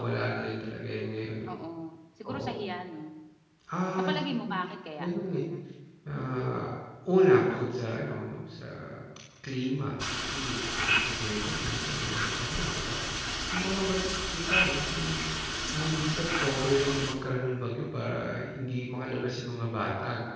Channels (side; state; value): both; identical; correlation 1.00